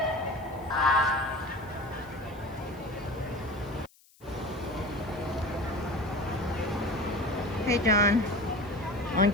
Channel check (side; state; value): left; noise; hiss, 29 dB below the sound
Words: Hey John, on